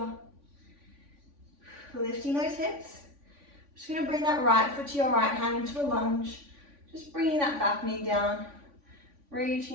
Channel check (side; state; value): left; late; 3.5 ms